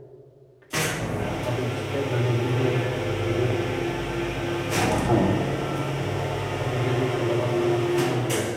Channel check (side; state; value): both; identical; correlation 1.00